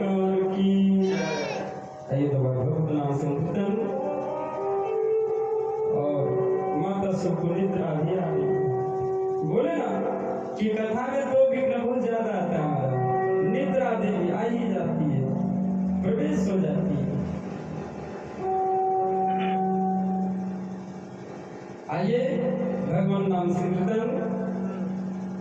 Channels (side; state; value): both; identical; correlation 1.00